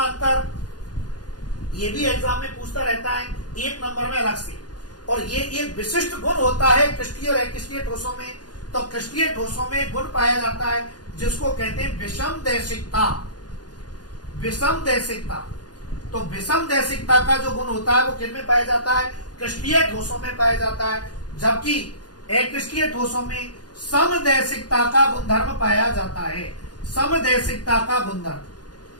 अंतर, ये भी एग्जाम में पूछता रहता है 1 नंबर में अलग से, और ये एक विशिष्ट गुण होता है क्रिस्टीय और अक्रिस्टीय ठोसों में। तो क्रिस्टीय ठोसों में गुण पाया जाता है जिसको कहते हैं विषम दैशिकता। विषम दैशिकता, तो विषम दैशिकता का जो गुण होता है वो किन में पाया जाता है, क्रिस्टीय ठोसों में पाया जाता है, जबकि अक्रिस्टीय ठोसों में समदैशिकता का गुणधर्म पाया जाता है। समदैशिकता का गुणधर्म,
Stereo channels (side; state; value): right; late; 0.69 ms